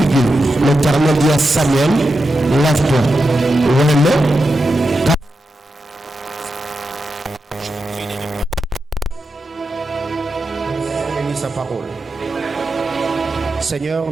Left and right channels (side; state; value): both; normal; correlation 0.89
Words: L'Éternel dit à Samuel, lève-toi. Bénis sa parole. Seigneur